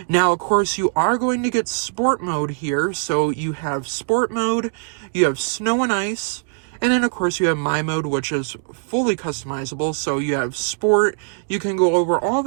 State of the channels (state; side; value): silent; left; 59 dB below the other